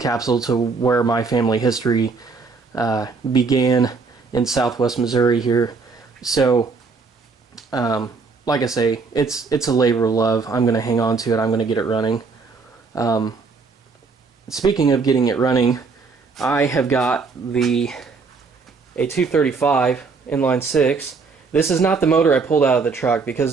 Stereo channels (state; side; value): quieter; left; 4.6 dB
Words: to where my family history began in Southwest Missouri here. So, like I say, it's a labor of love. I'm going to hang on to it. I'm going to get it running. Speaking of getting it running, I have got a 235 inline 6. This is not the motor I pulled out of the truck, because